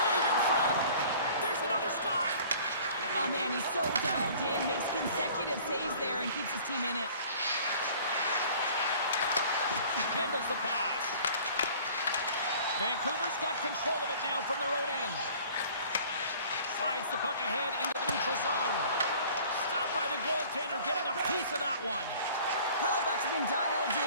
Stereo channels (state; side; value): inverted; both; correlation -0.49